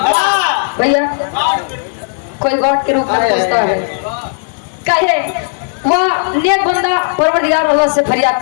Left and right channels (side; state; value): right; silent; digital silence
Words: भैया कोई गॉड के रूप में पूछता है। कहे वह नेक बंदा परवरदिगार अल्लाह से फरियाद